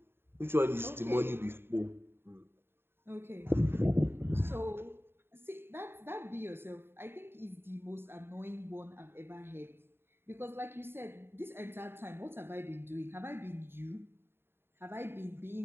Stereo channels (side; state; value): left; late; 0.11 ms